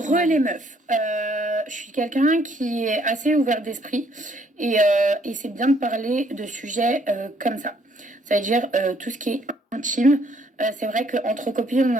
trop ma Les vie. meufs, je suis quelqu'un qui est assez ouvert d'esprit et c'est bien de parler de sujets comme ça. Ça veut dire tout ce qui est intime. C'est vrai qu'entre copines, on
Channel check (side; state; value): both; normal; correlation 0.66